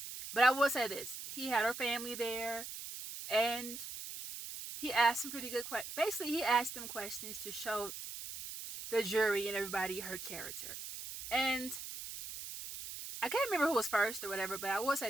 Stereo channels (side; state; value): right; noise; hiss, 9 dB below the sound